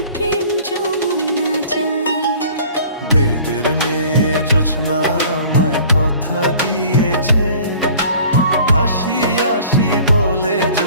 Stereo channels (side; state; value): both; inverted; correlation -0.48